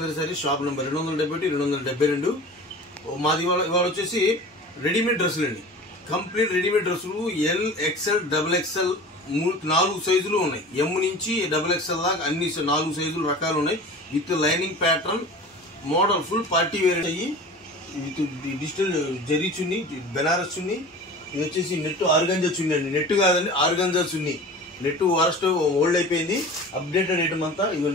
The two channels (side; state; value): both; normal; correlation 0.38